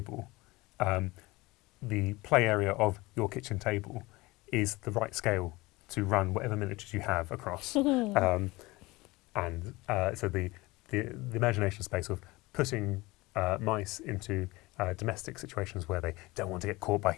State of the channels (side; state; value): right; quieter; 21.7 dB